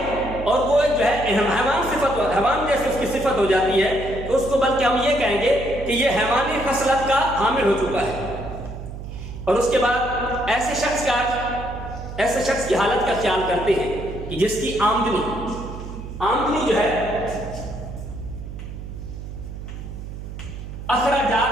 और वो जो है हैवान जैसे उसकी सिफत हो जाती है, तो उसको बल्कि हम ये कहेंगे कि ये हैवानी खसलत का हामिल हो चुका है। और उसके बाद ऐसे शख्स की हालत का ख्याल करते हैं कि जिसकी आमदनी जो है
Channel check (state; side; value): noise; right; hum, 10 dB below the sound